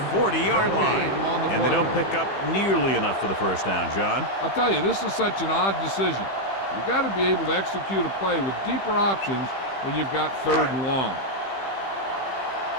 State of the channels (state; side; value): late; right; 15 ms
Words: 40-yard line. And they don't pick up nearly enough for the first down, John. I'll tell you, this is such an odd decision. You've got to be able to execute a play with deeper options when you've got third and long.